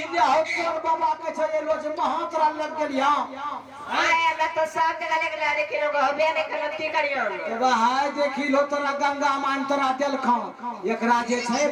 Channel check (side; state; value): both; identical; correlation 1.00